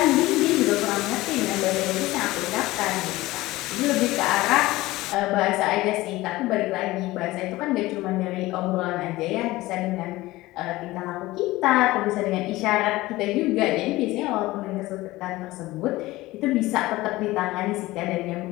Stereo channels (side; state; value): right; quieter; 18.7 dB